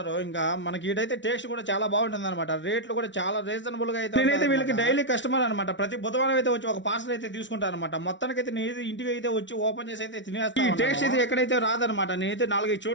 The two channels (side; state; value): right; late; 0.54 ms